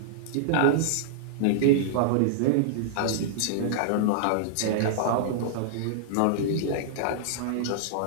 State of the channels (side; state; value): both; different; correlation -0.02